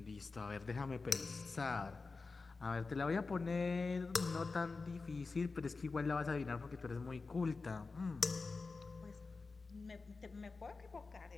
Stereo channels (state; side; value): quieter; right; 4.1 dB